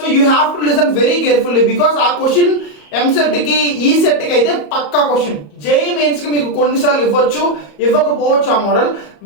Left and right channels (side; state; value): right; late; 34 ms